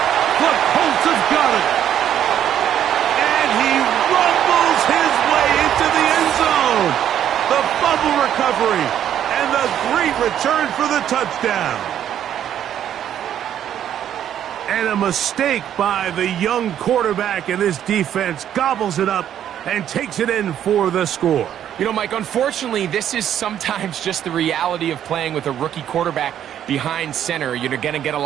The Colts have got it. And he rumbles his way into the end zone. The fumble recovery and the great return for the touchdown. And a mistake by the young quarterback, and this defense gobbles it up and takes it in for the score. You know, Mike, unfortunately, this is sometimes just the reality of playing with a rookie quarterback behind center. You're going to get a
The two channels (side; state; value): left; quieter; 10.3 dB